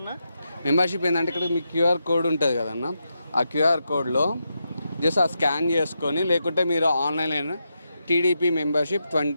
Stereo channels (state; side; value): inverted; both; correlation -0.85